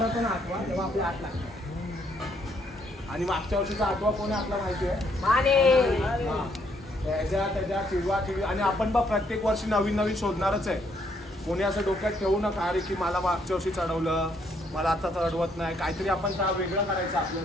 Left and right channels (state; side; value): normal; both; correlation 0.70